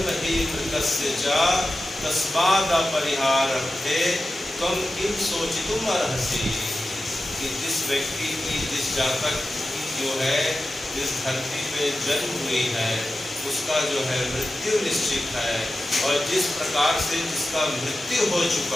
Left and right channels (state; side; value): normal; both; correlation 0.93